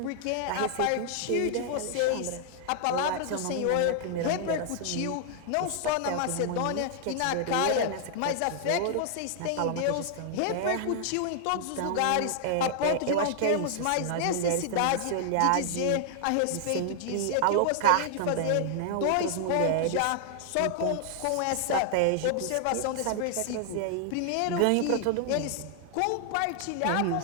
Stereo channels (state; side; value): different; both; correlation 0.00